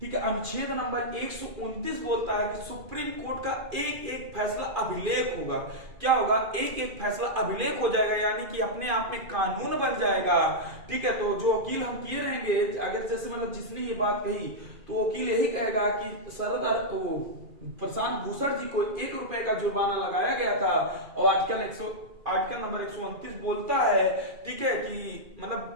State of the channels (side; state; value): left; late; 2.4 ms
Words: ठीक है, अनुच्छेद नंबर 129 बोलता है कि सुप्रीम कोर्ट का एक फैसला अभिलेख होगा। क्या होगा? एक फैसला अभिलेख हो जाएगा, यानी कि अपने आप में कानून बन जाएगा, ठीक है। तो जो वकील हम किए रहेंगे, अगर जैसे मतलब जिसने ये बात कही, तो वकील यही कहेगा कि प्रशांत भूषण जी को 1 रुपए का जुर्माना लगाया गया था और आर्टिकल नंबर 129 बोलता है, ठीक है, कि